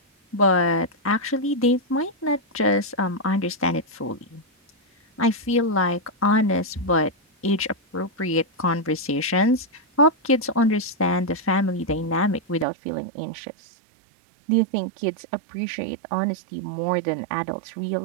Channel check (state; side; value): drops out; left; at 12.7 s